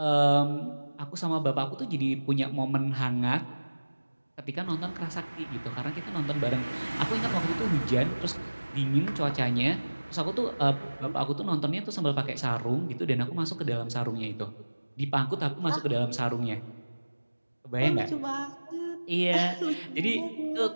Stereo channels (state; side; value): inverted; both; correlation -1.00